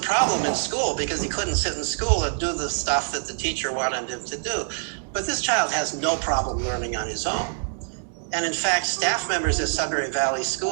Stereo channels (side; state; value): left; silent; digital silence